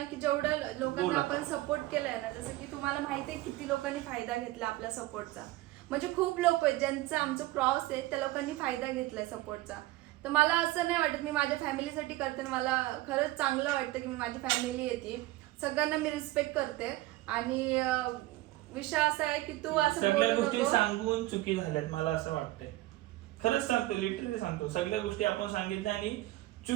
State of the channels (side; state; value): left; quieter; 17.8 dB